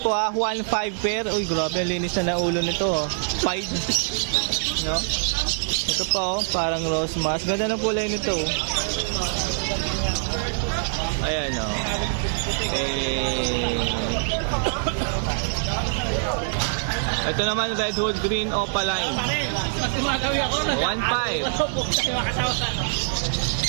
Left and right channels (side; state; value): left; silent; digital silence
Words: 1.5 pair. Uy, grabe, linis na ng ulo nito, oh. Pied. No? Ito pa, oh, parang rose mask. Ganda ng kulay nito, oh. Ayan, oh. Ito naman red hood green Opaline.